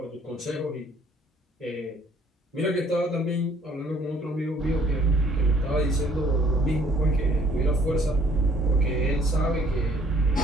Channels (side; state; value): both; normal; correlation 0.60